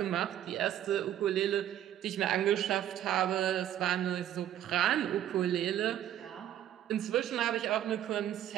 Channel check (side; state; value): left; quieter; 11.6 dB